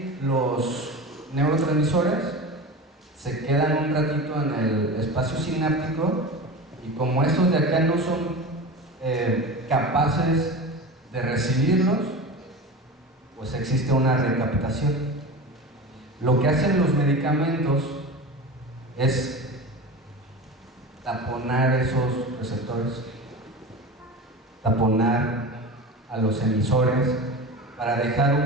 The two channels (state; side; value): normal; both; correlation 0.30